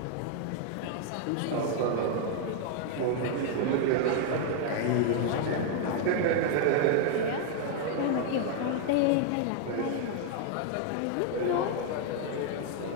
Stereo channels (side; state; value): both; different; correlation 0.00